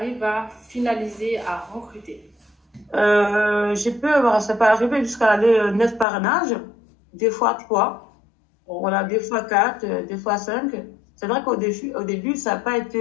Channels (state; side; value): drops out; right; at 6.1 s